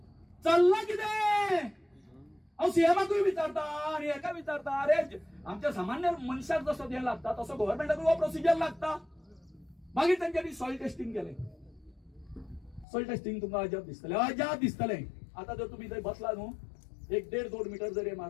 किती अहो सीएमाकूय विचारता आणि एका विचारता। अरे आमच्या सामान्य मनशाक जसं द्यायला लागता तसं गव्हर्नमेंटाक प्रोसिजर लागता। मागीर त्यांच्यानी सॉइल टेस्टिंग केले। सॉइल टेस्टिंग तुमकां अजाप दिसतले। आता जर तुम्ही थंय बसला न्हू 1-1.5-2 मीटर जर हे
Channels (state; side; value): drops out; right; at 12.9 s